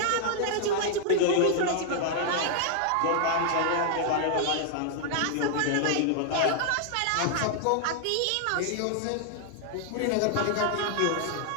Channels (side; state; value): both; different; correlation -0.01